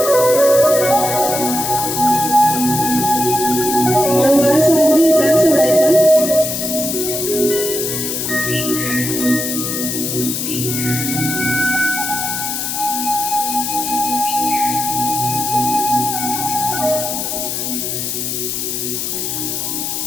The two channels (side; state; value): left; noise; hiss, 3 dB below the sound